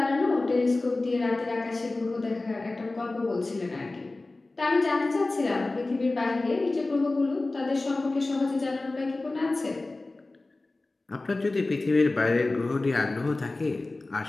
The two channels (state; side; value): quieter; right; 3.1 dB